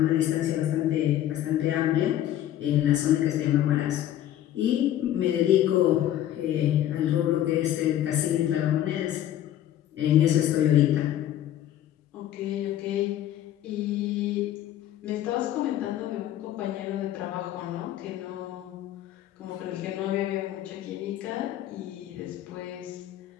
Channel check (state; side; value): quieter; right; 12.2 dB